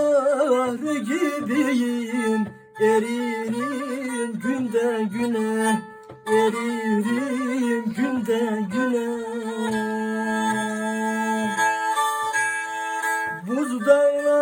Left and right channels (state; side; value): identical; both; correlation 1.00